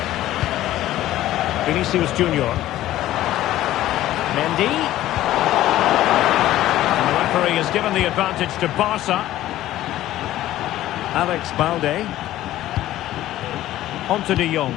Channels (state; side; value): quieter; right; 14.3 dB